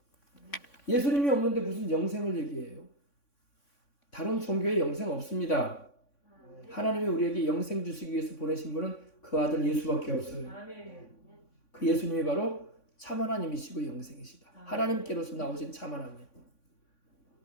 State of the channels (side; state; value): right; late; 3.6 ms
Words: 예수님이 없는데 무슨 영생을 얘기해요? 다른 종교에 영생 없습니다. 하나님이 우리에게 영생 주시기 위해서 보내신 분은 그 아들 예수밖에 없어요. 그 예수님이 바로 참 하나님이시고 영생이시다. 하나님께로서 나오신 참 하나님.